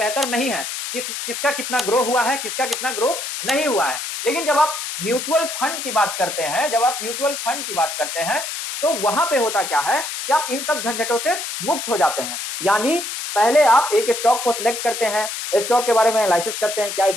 नहीं है, किसका कितना ग्रो हुआ है, किसका कितना ग्रो नहीं हुआ है। लेकिन जब आप म्यूचुअल फंड की बात करते हैं, जब आप म्यूचुअल फंड की बात करते हैं, तो वहां पे होता क्या है कि आप इन सब झंझटों से मुक्त हो जाते हैं। यानी पहले आप एक स्टॉक को सिलेक्ट करते हैं, स्टॉक के बारे में एनालिसिस करते हैं, क्या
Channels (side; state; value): left; noise; hiss, 5 dB below the sound